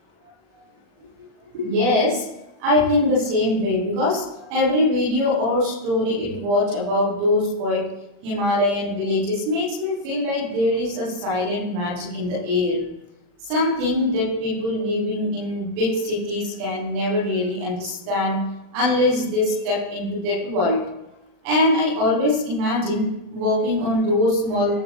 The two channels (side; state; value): left; late; 40 ms